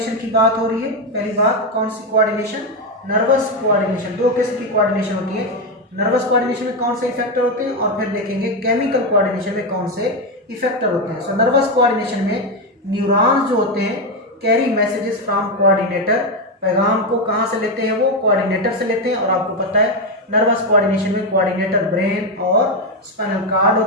की बात हो रही है। पहली बात, कौन सी कोऑर्डिनेशन? Nervous coordination. दो किस्म की कोऑर्डिनेशन होती है। नर्वस कोऑर्डिनेशन में कौन से इफेक्टर होते हैं और फिर देखेंगे केमिकल कोऑर्डिनेशन में कौन से इफेक्टर होते हैं। सो नर्वस कोऑर्डिनेशन में न्यूरॉन्स जो होते हैं कैरी मैसेजेस फ्रॉम कोऑर्डिनेटर, पैगाम को कहाँ से लेते हैं? वो कोऑर्डिनेटर से लेते हैं। और आपको पता है नर्वस कोऑर्डिनेशन में कोऑर्डिनेटर ब्रेन और स्पाइनल कार्ड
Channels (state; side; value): normal; both; correlation 0.08